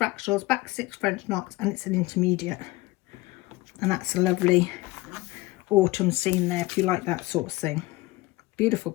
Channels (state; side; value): quieter; right; 20.1 dB